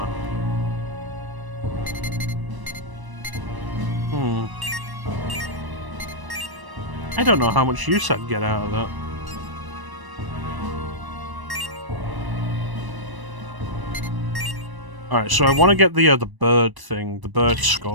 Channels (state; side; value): late; left; 1.0 ms